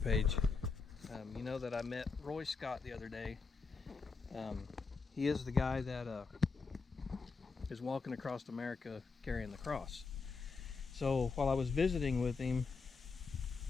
page, you know that I met Roy Scott the other day. He is the guy that is walking across America carrying the cross. So while I was visiting with him,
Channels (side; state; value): right; quieter; 4.6 dB